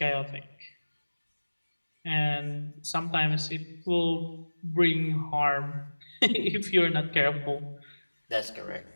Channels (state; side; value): inverted; both; correlation -1.00